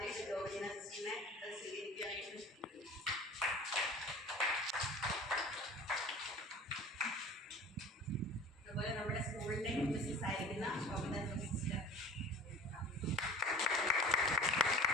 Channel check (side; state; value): both; normal; correlation 0.41